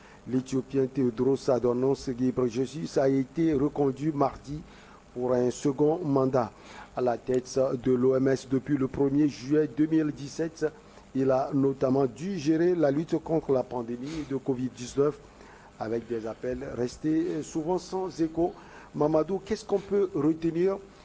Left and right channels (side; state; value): both; identical; correlation 1.00